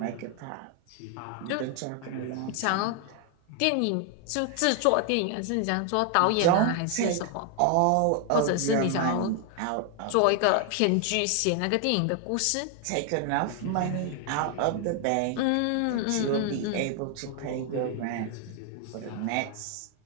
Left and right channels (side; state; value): both; different; correlation 0.00